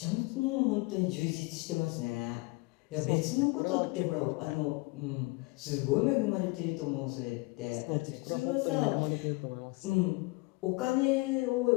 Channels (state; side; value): quieter; right; 25.3 dB